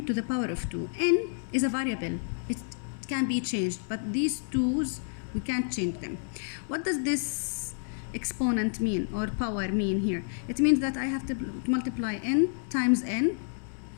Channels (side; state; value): right; silent; digital silence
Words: to the power of 2. N is a variable. It can be changed, but these 2's, we can't change them. What does this exponent mean, or power mean here? It means that I have to multiply n times n,